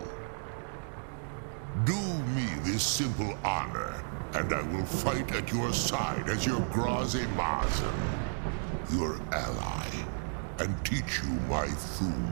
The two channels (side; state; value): left; silent; digital silence